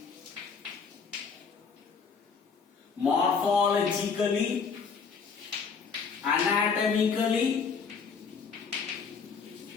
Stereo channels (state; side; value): quieter; right; 5.6 dB